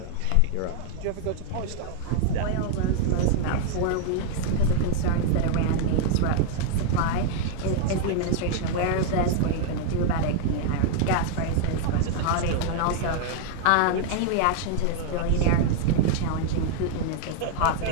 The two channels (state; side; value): different; both; correlation 0.00